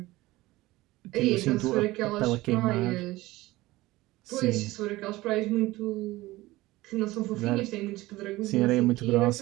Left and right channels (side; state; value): left; quieter; 18.8 dB